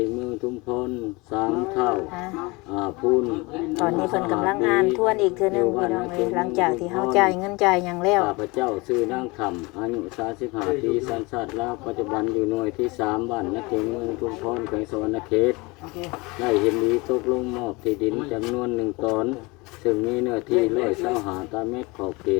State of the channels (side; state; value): right; quieter; 25.1 dB